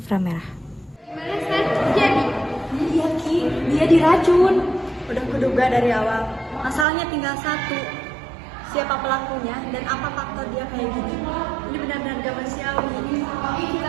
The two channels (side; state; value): left; drops out; at 6.9 s